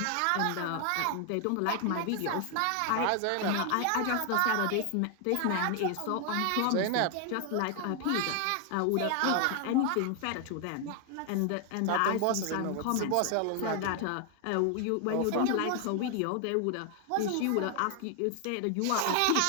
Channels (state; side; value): different; both; correlation 0.00